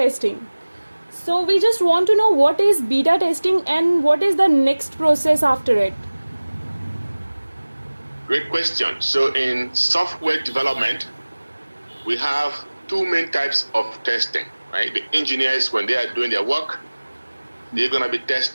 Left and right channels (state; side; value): inverted; both; correlation -1.00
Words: So we just want to know what is beta testing and what is the next process after it. Great question. So in software development, we have two main types of testing, right? The engineers, when they are doing their work, they're going to be